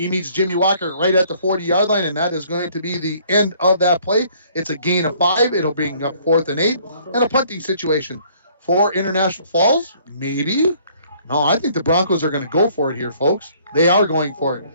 meets Jimmy Walker right at the 40-yard line, and that is going to be the end of that play. It's a gain of 5. It'll bring up 4th and 8, and a punting situation for International Falls. Maybe. No, I think the Broncos are going to go for it here, folks. They are going for it.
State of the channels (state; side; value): inverted; both; correlation -0.60